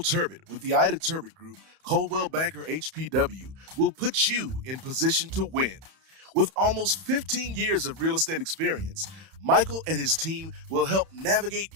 Turbot with the Ida Turbot Group, Coldwell Banker HPW, will put you in position to win. With almost 15 years of real estate experience, Michael and his team will help navigate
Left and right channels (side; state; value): left; late; 31 ms